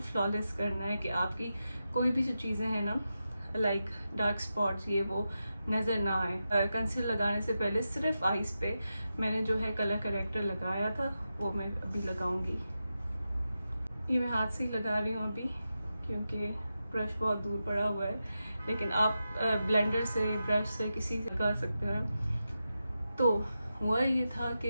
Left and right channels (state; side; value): inverted; both; correlation -0.90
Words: फ्लॉलेस करना है, कि आपकी कोई भी जो चीज़ें हैं ना लाइक डार्क स्पॉट्स ये वो नज़र ना आए। कंसीलर लगाने से पहले सिर्फ आईज पे मैंने जो है कलर करेक्टर लगाया था, वो मैं अभी लगाऊंगी। ये मैं हाथ से ही लगा रही हूँ अभी, क्योंकि ब्रश बहुत दूर पड़ा हुआ है, लेकिन आप ब्लेंडर से, ब्रश से, किसी से लगा सकते हैं। तो हुआ ये था